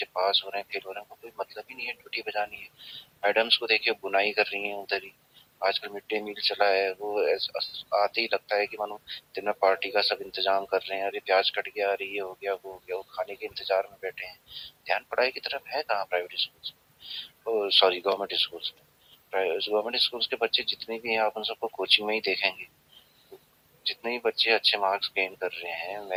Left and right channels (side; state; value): both; identical; correlation 1.00